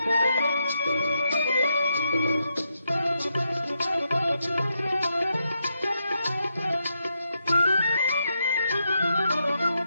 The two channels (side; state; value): both; inverted; correlation -0.83